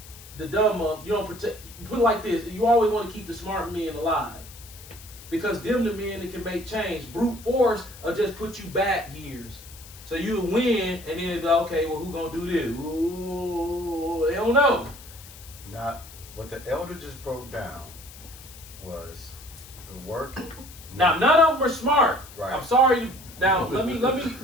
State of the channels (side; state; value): left; noise; hiss, 18 dB below the sound